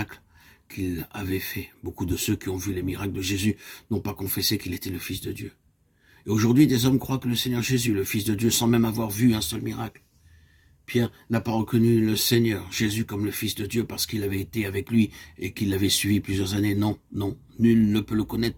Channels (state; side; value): identical; both; correlation 1.00